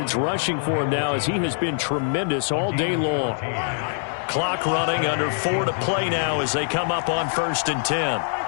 rushing for him now as he has been tremendous all day long. Clock running, under 4 to play now as they come up on 1st and 10.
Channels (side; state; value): right; silent; digital silence